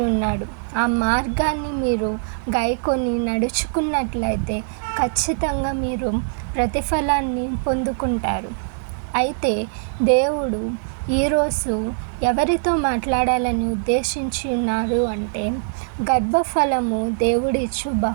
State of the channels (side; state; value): left; silent; digital silence